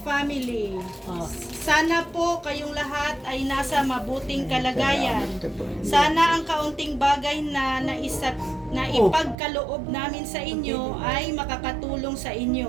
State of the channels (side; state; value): left; drops out; at 9.3 s